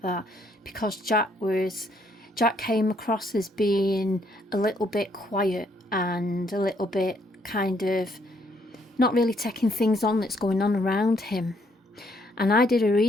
that, because Jack came across as being a little bit quiet and a little bit kind of not really taking things on that's going on around him. And I did a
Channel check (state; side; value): normal; both; correlation 0.70